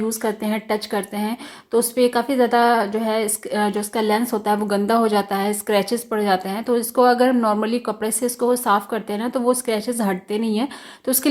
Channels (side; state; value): both; identical; correlation 1.00